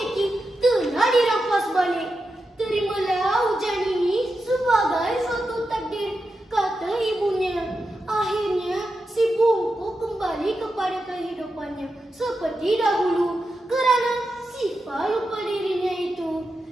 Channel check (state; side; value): normal; both; correlation 0.89